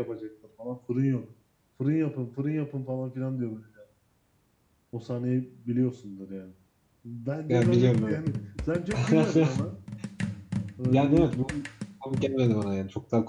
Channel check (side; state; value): both; identical; correlation 1.00